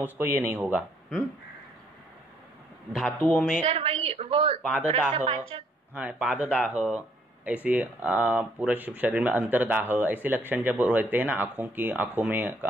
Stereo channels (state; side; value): normal; both; correlation 0.67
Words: ये नहीं होगा। धातुओं में सर वही वो पाददाह, पाददाह ऐसे पूरे शरीर में अंतरदाह ऐसे लक्षण जब रहते हैं ना,